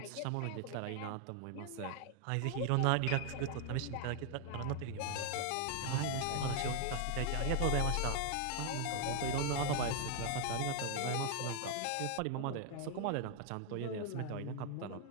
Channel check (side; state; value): both; different; correlation 0.00